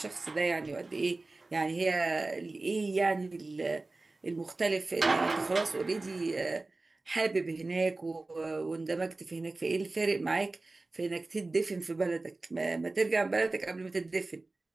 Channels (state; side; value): quieter; left; 3.2 dB